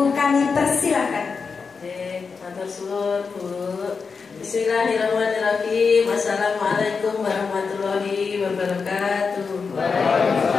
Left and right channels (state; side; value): quieter; right; 5.2 dB